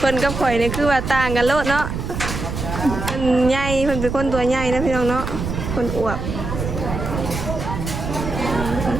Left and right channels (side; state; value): right; noise; rumble, 5 dB below the sound